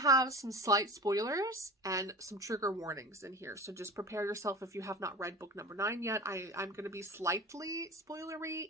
some slight spoilers and some trigger warnings in here. So just prepare yourself if you have not read book number 9 yet. I'm going to be slightly spoilery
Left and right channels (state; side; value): normal; both; correlation 0.33